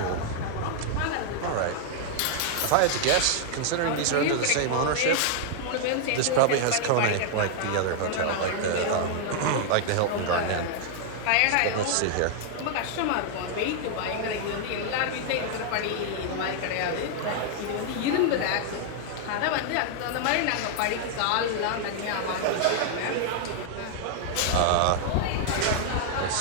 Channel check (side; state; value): both; different; correlation 0.00